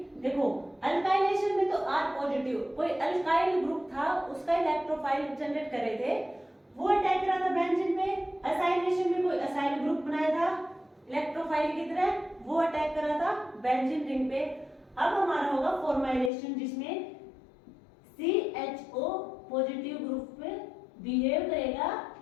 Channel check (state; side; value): drops out; right; at 16.3 s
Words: देखो अल्काइलेशन में तो R पॉजिटिव, कोई अल्काइल ग्रुप था उसका इलेक्ट्रोफाइल जनरेट कर रहे थे, वो अटैक करा था बेंजीन पे। असाइलेशन में कोई असाइल ग्रुप बनाया था इलेक्ट्रोफाइल की तरह, वो अटैक करा था बेंजीन रिंग पे। अब हमारा होगा फॉर्माइलेशन जिसमें CHO पॉजिटिव ग्रुप पे बिहेव करेगा